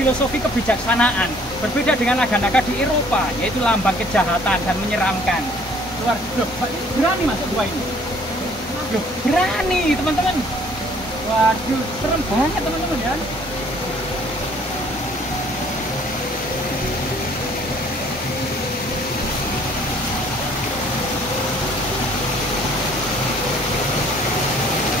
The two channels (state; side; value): normal; both; correlation 0.58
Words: kebijaksanaan. Berbeda dengan naga-naga di Eropa, yaitu lambang kejahatan dan menyeramkan. Luar loh, Mbak Titi berani masuk gua ini? Loh, berani teman-teman. Waduh, serem banget teman-teman ya.